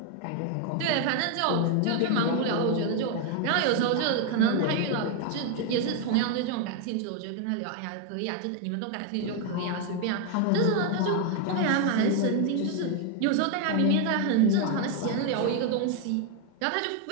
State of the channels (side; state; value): both; different; correlation 0.01